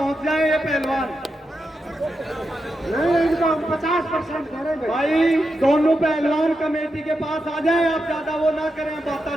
जाए ये पहलवान नहीं इनको 50% दे रहे भाई दोनों पहलवान कमेटी के पास आ जाए आप ज्यादा वो ना करें बाता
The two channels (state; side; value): normal; both; correlation 0.87